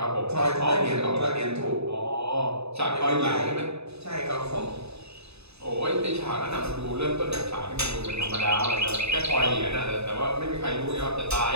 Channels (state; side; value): late; left; 0.79 ms